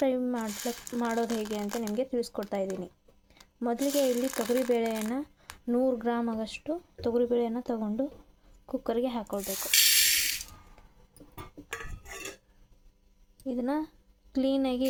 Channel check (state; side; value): identical; both; correlation 1.00